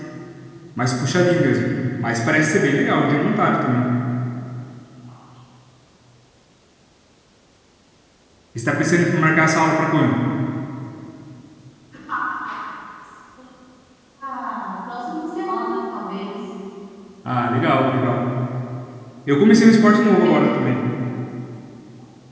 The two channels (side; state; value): both; identical; correlation 1.00